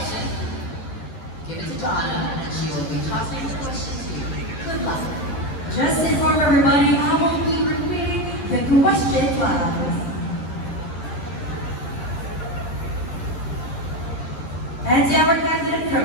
Give it to Donna, and she will be tossing the question to you. Good luck. Just inform everybody, I will be repeating the question class. And our candidate from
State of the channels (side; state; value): right; late; 11 ms